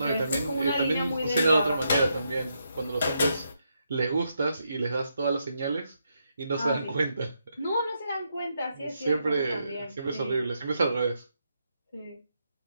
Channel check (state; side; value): inverted; both; correlation -0.80